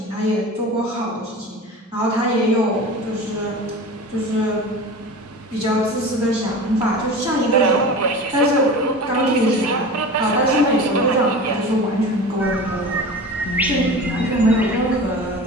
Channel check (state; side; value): normal; both; correlation 0.34